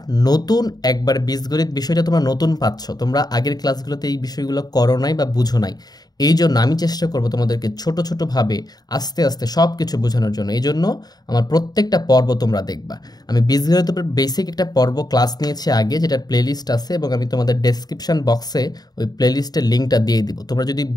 নতুন একবার বীজগণিত বিষয়টা তোমরা নতুন পাচ্ছ, তোমরা আগের ক্লাসগুলোতে এই বিষয়গুলো করো নাই বা বুঝো নাই, এই জন্য আমি চেষ্টা করব তোমাদেরকে ছোট ছোটোভাবে আস্তে আস্তে সব কিছু বোঝানোর জন্য। এই জন্য আমার প্রত্যেকটা পর্ব তোমরা দেখবা। আমি বীজগণিতের উপর বেসিক একটা পর্ব ক্লাস নিয়েছি আগে, যেটার প্লেলিস্ট আছে, এবং আমি তোমাদের ডেসক্রিপশন বক্সে ওই প্লেলিস্টের লিঙ্কটা দিয়ে দিব। তোমরা যদি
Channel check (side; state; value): right; late; 0.19 ms